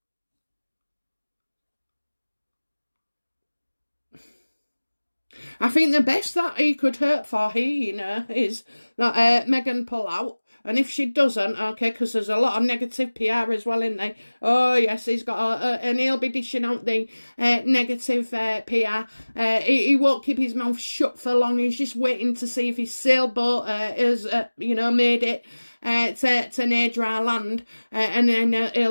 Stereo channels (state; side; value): inverted; both; correlation -1.00